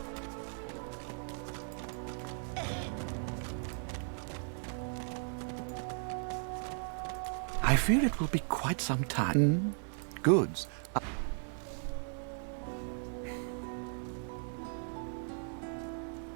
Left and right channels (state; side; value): silent; left; 53 dB below the other